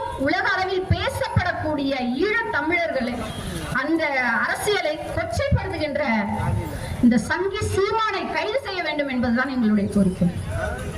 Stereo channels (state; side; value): identical; both; correlation 1.00